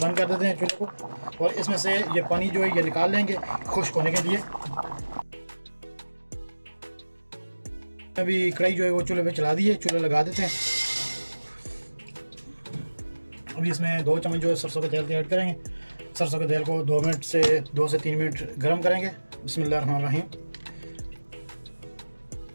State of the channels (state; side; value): inverted; both; correlation -1.00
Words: कर देते हैं चूल्हे को, और इसमें से ये पानी जो है ये निकाल लेंगे खुश्क होने के लिए। अभी कढ़ाई जो है वो चूल्हे पे चला दी है, चूल्हा लगा देते हैं। अभी इसमें 2 चम्मच जो है सरसों के तेल के ऐड करेंगे। सरसों के तेल को 2 से 3 मिनट गर्म करेंगे। बिस्मिल्लाहिर्रहमानिर्रहीम।